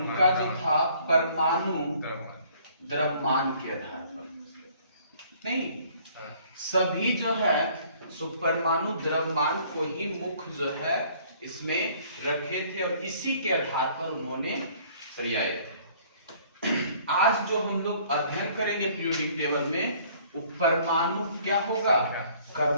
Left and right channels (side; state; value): both; inverted; correlation -0.57